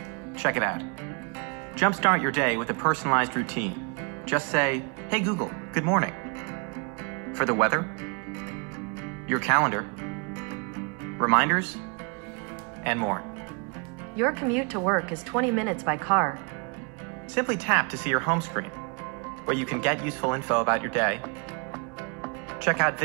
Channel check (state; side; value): quieter; left; 35.1 dB